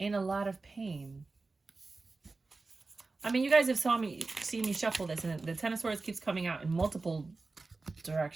a lot of pain. I mean, you guys have seen me shuffle this, and the Ten of Swords keeps coming out in multiple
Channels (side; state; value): left; quieter; 3.7 dB